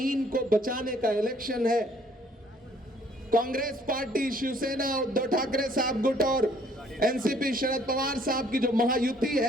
को बचाने का इलेक्शन है। कांग्रेस पार्टी, शिवसेना, उद्धव ठाकरे साहब गुट और एनसीपी शरद पवार साहब की जो महायुति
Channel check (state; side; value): normal; both; correlation 0.61